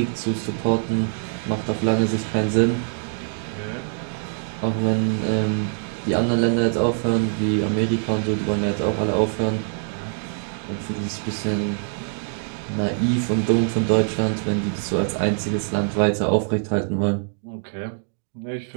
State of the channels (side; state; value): left; silent; digital silence